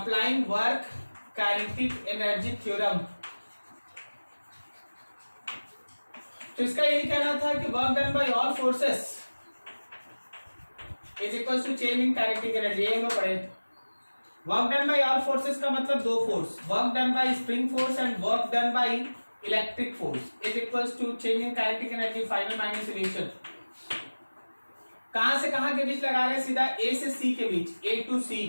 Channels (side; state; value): both; inverted; correlation -1.00